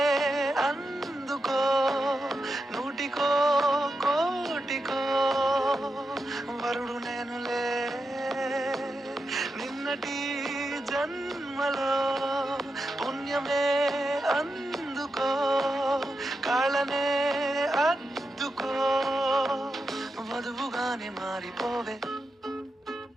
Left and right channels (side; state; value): both; normal; correlation 0.88